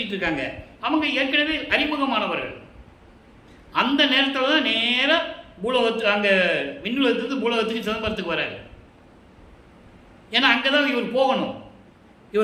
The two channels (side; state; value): both; identical; correlation 1.00